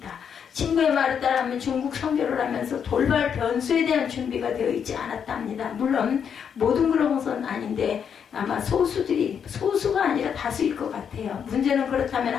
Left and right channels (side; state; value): right; quieter; 7.6 dB